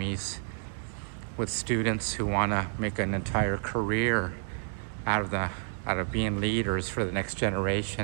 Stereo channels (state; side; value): silent; left; digital silence